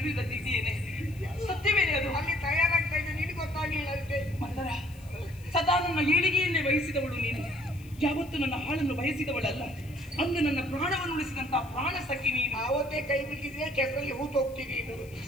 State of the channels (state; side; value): noise; left; hiss, 24 dB below the sound